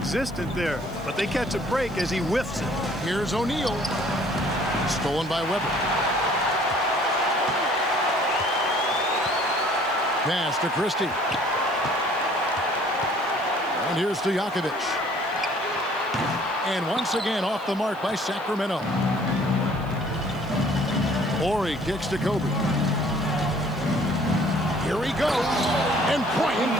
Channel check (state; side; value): noise; right; hiss, 26 dB below the sound